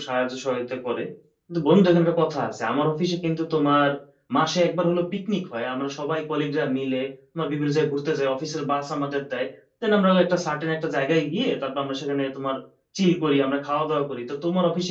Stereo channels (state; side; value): identical; both; correlation 1.00